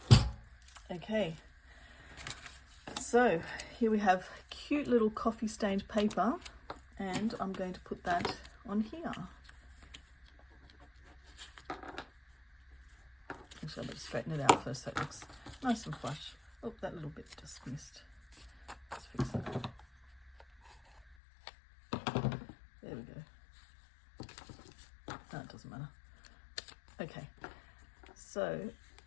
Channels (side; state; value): right; drops out; at 21.2 s